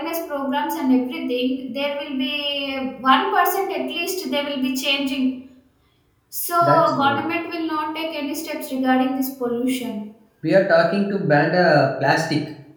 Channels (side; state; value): both; identical; correlation 1.00